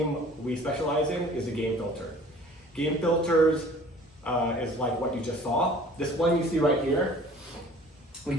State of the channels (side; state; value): both; normal; correlation 0.50